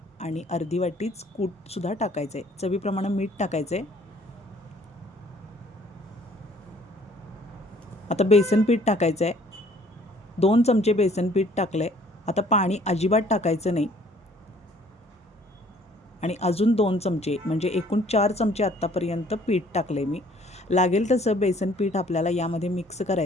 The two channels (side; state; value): both; normal; correlation 0.58